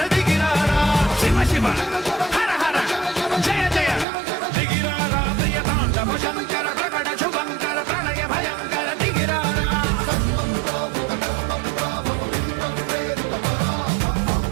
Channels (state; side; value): drops out; left; at 4.0 s